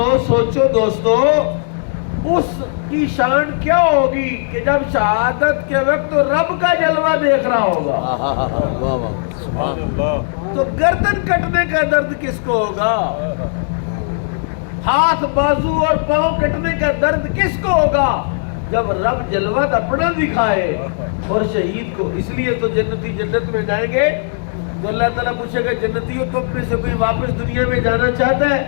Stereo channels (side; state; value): right; silent; 68 dB below the other